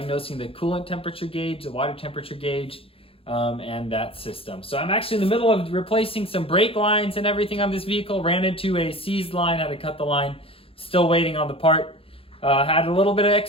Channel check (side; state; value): right; late; 0.27 ms